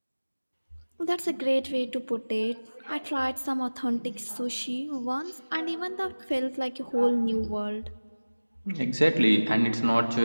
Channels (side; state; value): both; inverted; correlation -1.00